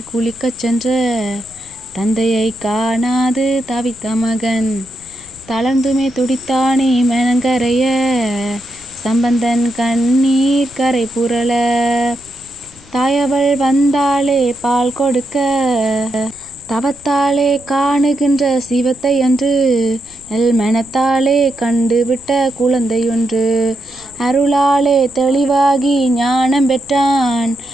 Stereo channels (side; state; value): left; noise; rumble, 24 dB below the sound